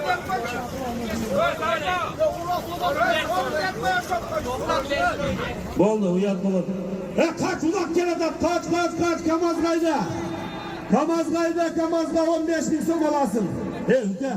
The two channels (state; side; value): identical; both; correlation 1.00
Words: Boldu, uyat boldu. Kaç ulak gel adam, kaç, Kamazgay'da. Kamazga 15.000 so'm olasın. Hüke.